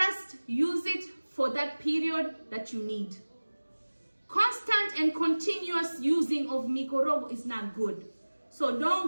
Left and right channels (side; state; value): both; inverted; correlation -1.00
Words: use it for that period that you need. Constant and continuous using of mikorogo is not good. So don't